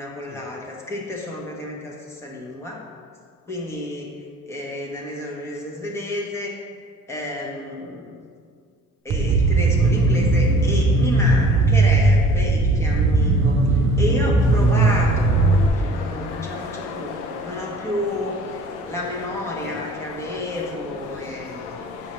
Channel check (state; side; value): normal; both; correlation 0.49